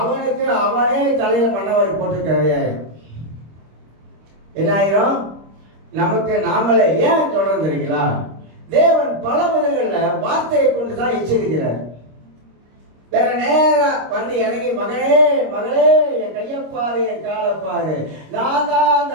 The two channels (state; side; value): late; left; 26 ms